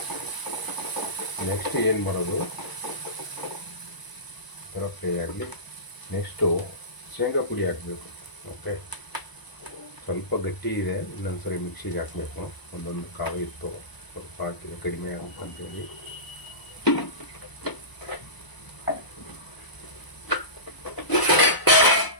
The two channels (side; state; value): right; late; 1.0 ms